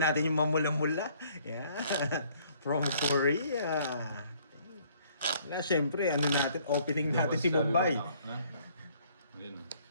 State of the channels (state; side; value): inverted; both; correlation -0.61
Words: natin yung mamula-mula. Yan. From Korea. Wala, siyempre. Ano natin? Opening natin si Bombay. Ayun,